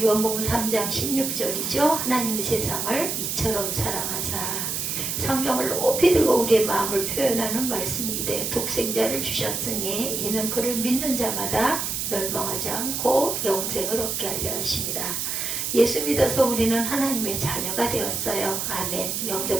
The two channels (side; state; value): right; noise; hiss, 2 dB below the sound